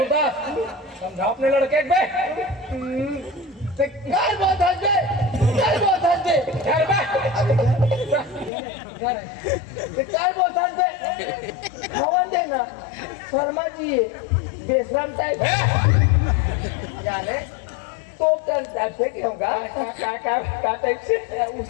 समझा अपने लड़के बे घर बहुत हंस दे घर बहुत हंस दे घर बे घर बहुत हंस दे खवन देना शर्मा जी बेशरम टाइप ए, जाने तो क्या उड़न टाइप से कि होगा का टाइप से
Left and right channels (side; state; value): right; drops out; at 8.5 s